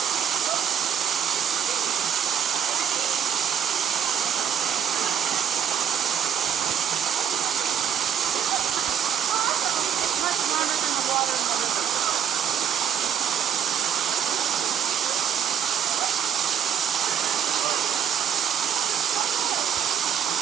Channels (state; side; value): quieter; left; 8.6 dB